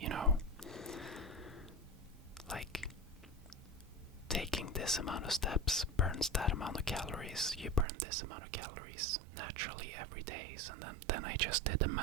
like taking this amount of steps burns that amount of calories. You burn this amount of calories naturally every day. And then I just did the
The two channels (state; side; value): drops out; left; at 7.9 s